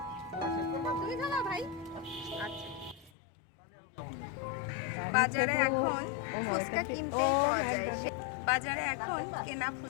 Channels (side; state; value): right; drops out; at 3.1 s